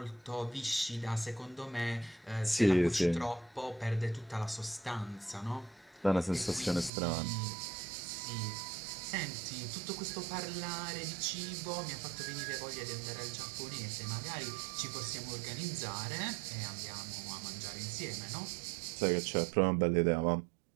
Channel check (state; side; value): drops out; left; at 6.9 s